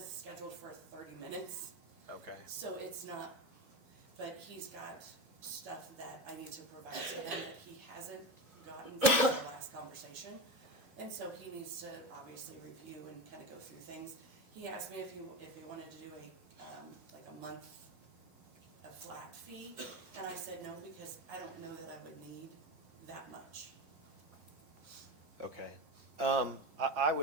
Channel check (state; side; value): late; left; 5.8 ms